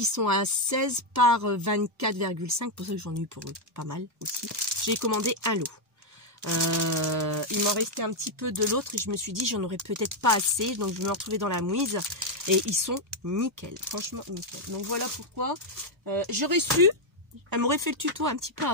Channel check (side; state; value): both; normal; correlation 0.01